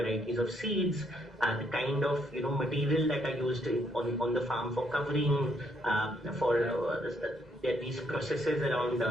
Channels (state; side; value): normal; both; correlation 0.72